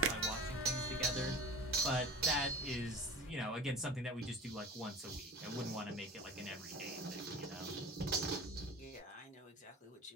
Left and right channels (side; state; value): both; normal; correlation 0.36